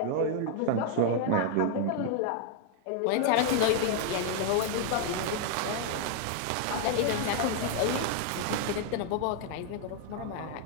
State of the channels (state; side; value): different; both; correlation 0.00